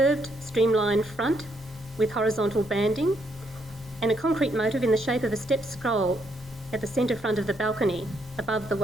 streamlined front with horizontal banding and a concrete motive in the shape of a stepped scroll at the centre front of the balcony above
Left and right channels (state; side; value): normal; both; correlation 0.74